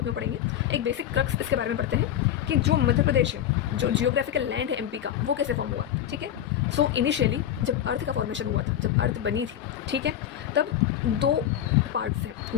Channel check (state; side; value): quieter; right; 10.8 dB